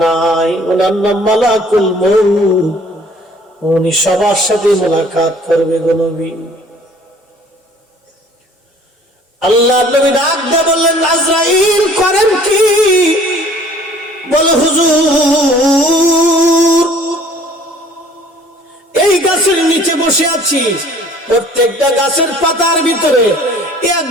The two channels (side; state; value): both; normal; correlation 0.53